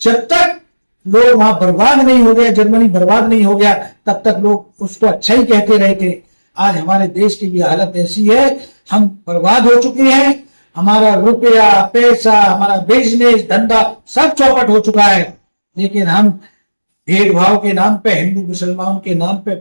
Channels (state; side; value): inverted; both; correlation -1.00